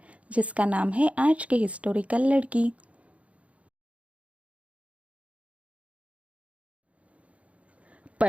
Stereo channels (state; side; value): late; left; 0.064 ms